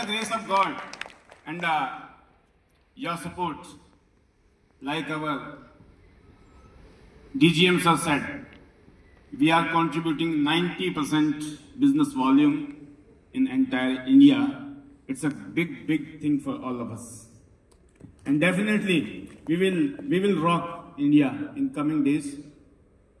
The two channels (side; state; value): both; identical; correlation 1.00